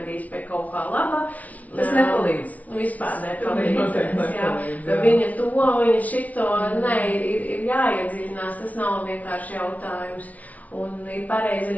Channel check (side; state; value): right; late; 0.071 ms